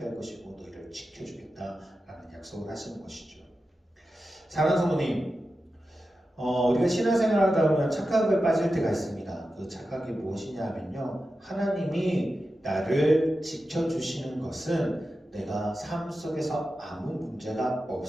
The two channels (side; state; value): both; normal; correlation 0.92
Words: 할 것이고 너희를 지켜주겠다라는 약속을 하시는 것이죠. 사랑하는 성도님, 우리가 신앙생활을 하다 보면 착각에 빠질 때가 있습니다. 그 착각이 무엇이냐 하면요, 하나님이 나를 지켜주시는 것은 내가 삶 속에서 아무 문제가